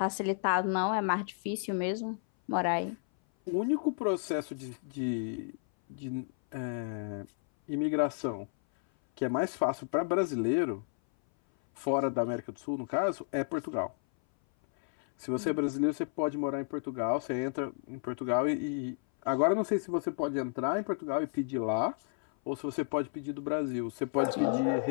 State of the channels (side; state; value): right; silent; 56 dB below the other